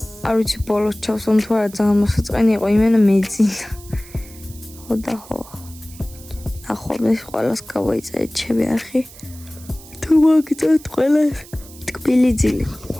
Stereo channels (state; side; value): noise; right; hiss, 20 dB below the sound